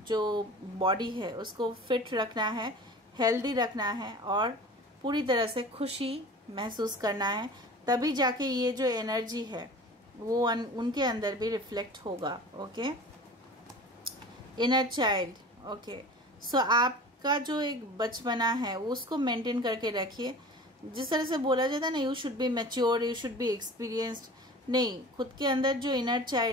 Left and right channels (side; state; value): both; normal; correlation 0.40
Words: जो बॉडी है उसको फिट रखना है, हेल्दी रखना है और पूरी तरह से खुशी महसूस करना है, तभी जाके ये जो एनर्जी है वो उनके अंदर भी रिफ्लेक्ट होगा। Okay, inner child. ओके, सो आपका जो एक बचपना है उसको मेंटेन करके रखिए। जिस तरह से बोला जाता है ना, you should be mature, you should be experienced, नहीं, खुद के अंदर जो इनर